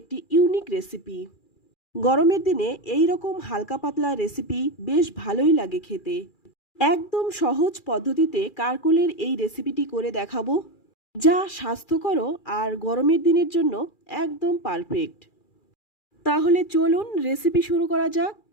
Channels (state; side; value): late; right; 2.4 ms